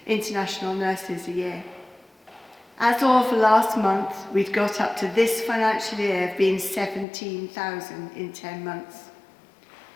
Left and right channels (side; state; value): right; drops out; at 7.1 s